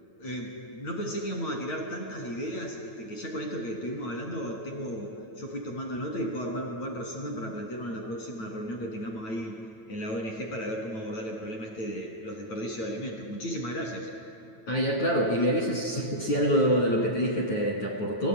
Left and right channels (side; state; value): right; late; 9.1 ms